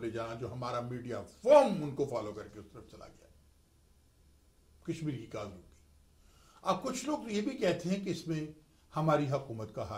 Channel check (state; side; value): identical; both; correlation 1.00